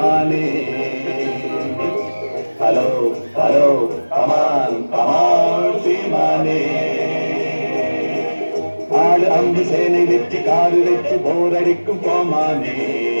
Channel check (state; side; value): inverted; both; correlation -1.00